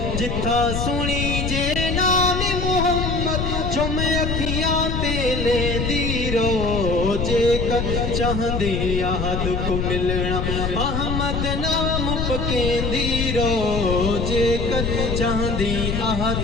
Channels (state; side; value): noise; left; rumble, 1 dB below the sound